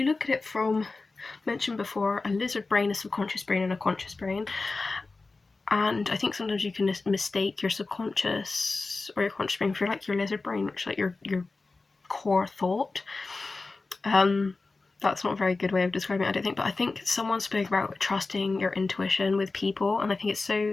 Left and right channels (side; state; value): right; quieter; 3.7 dB